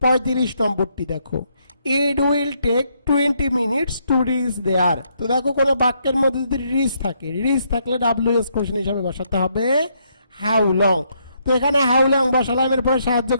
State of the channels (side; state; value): both; inverted; correlation -0.74